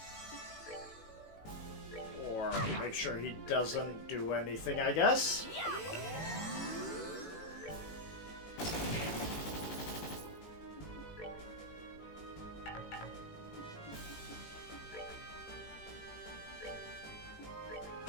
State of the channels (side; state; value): right; late; 18 ms